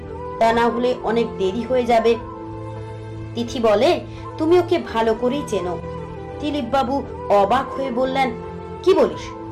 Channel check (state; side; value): identical; both; correlation 1.00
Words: তা না হলে অনেক দেরি হয়ে যাবে। তিথি বলে, তুমি ওকে ভালো করেই চেনো। দিলীপ বাবু অবাক হয়ে বললেন, কি বলিস?